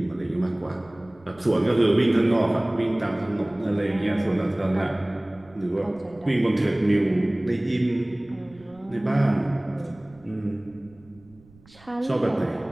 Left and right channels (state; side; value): noise; right; rumble, 27 dB below the sound